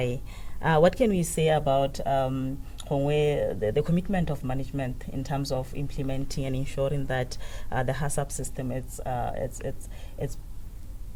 What can we say about the commitment of management in terms of implementing and ensuring that the HACCP system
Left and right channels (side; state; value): both; identical; correlation 1.00